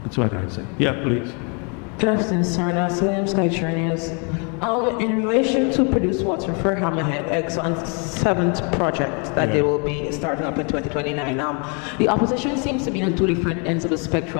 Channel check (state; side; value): quieter; right; 35.6 dB